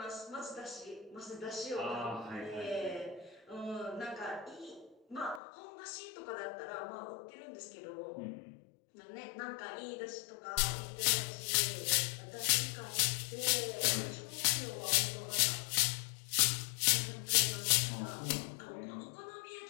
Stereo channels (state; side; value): drops out; right; at 5.4 s